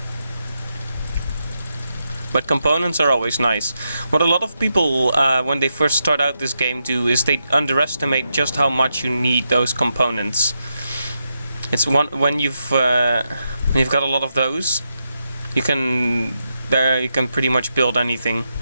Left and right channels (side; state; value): both; inverted; correlation -0.85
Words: But components are always nice. What a lot of people, when they first start out this game, do is they underestimate just how much you need those components. It's when you've got a lot of those, you can pretty much build anything.